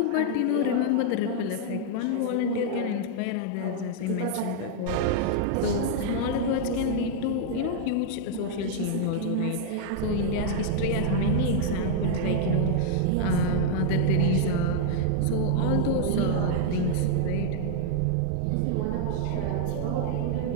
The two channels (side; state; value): both; different; correlation 0.00